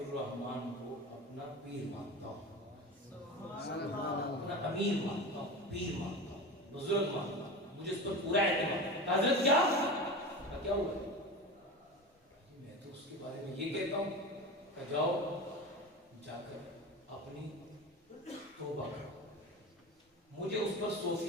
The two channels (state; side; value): normal; both; correlation 0.28